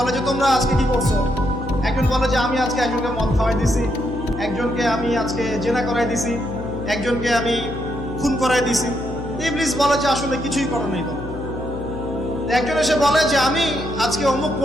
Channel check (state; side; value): noise; left; hum, 10 dB below the sound